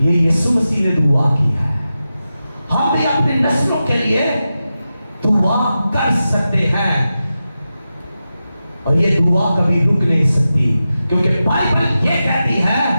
यीशु मसीह ने दुआ की है। हम भी अपनी नस्लों के लिए दुआ कर सकते हैं, और ये दुआ कभी रुक नहीं सकती, क्योंकि बाइबल ये कहती है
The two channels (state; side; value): inverted; both; correlation -0.92